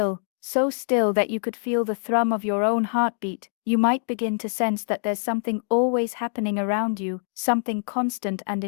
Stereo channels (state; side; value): silent; right; digital silence